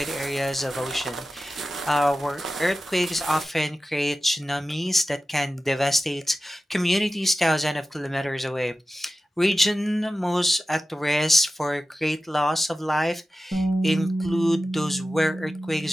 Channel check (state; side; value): normal; both; correlation 0.94